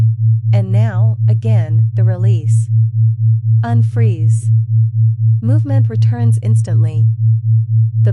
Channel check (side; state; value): both; identical; correlation 1.00